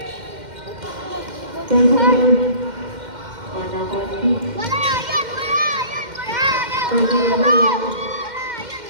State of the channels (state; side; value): late; left; 2.1 ms